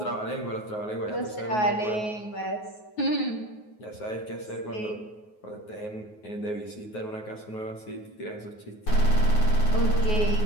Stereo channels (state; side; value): late; right; 9.4 ms